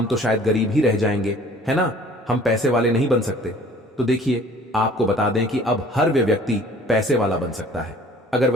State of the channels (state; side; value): normal; both; correlation 0.51